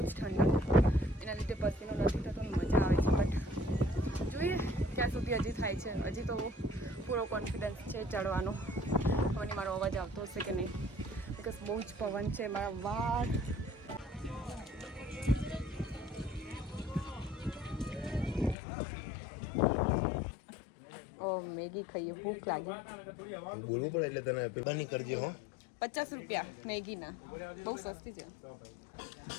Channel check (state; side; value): drops out; right; at 18.6 s